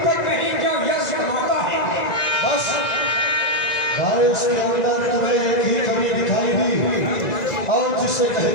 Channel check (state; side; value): late; right; 1.9 ms